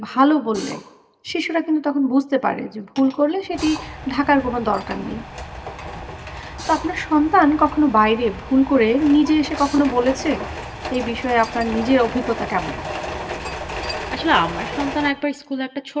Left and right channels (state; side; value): identical; both; correlation 1.00